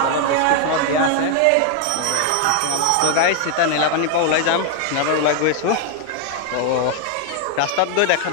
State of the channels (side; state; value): both; different; correlation 0.00